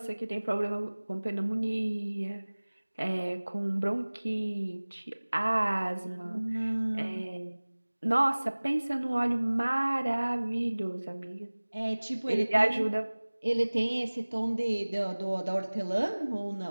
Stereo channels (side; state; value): both; inverted; correlation -1.00